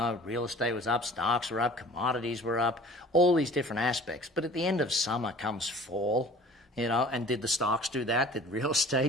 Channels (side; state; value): both; normal; correlation 0.46